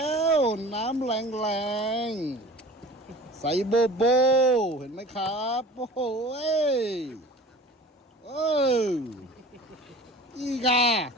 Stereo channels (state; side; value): normal; both; correlation 0.41